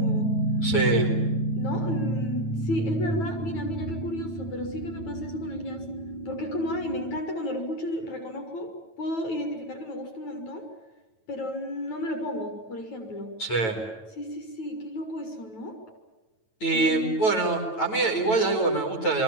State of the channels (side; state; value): right; late; 9.1 ms